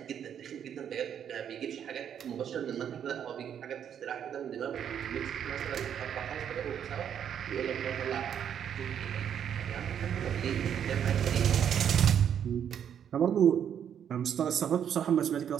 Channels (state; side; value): quieter; left; 8.8 dB